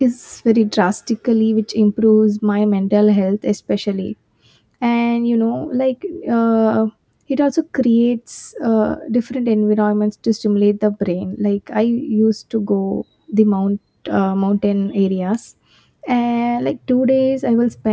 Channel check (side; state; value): both; identical; correlation 1.00